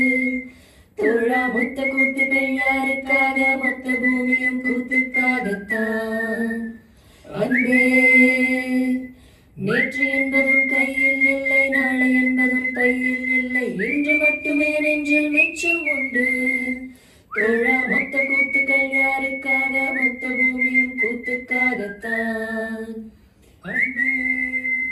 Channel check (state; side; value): identical; both; correlation 1.00